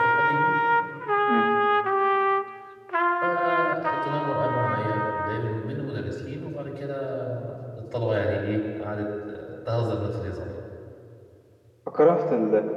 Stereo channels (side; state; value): both; identical; correlation 1.00